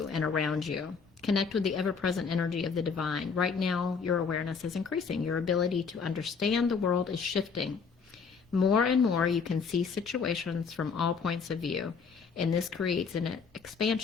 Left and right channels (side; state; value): right; quieter; 5.5 dB